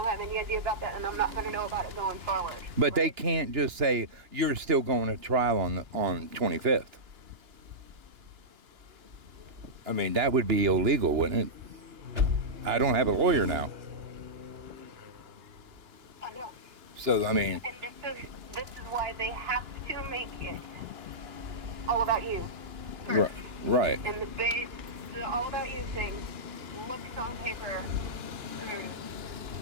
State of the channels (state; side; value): late; left; 2.9 ms